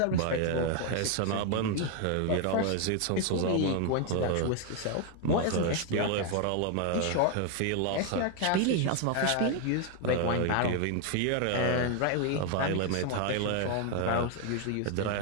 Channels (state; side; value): different; both; correlation 0.01